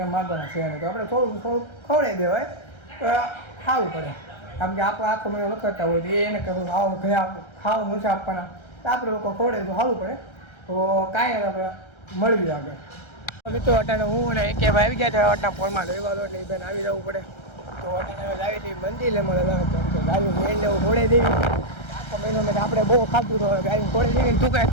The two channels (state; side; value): late; right; 1.3 ms